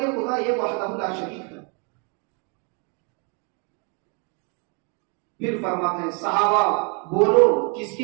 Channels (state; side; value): quieter; left; 35.9 dB